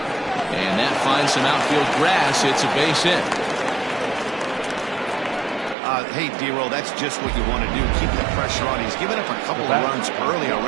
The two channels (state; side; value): drops out; left; at 5.8 s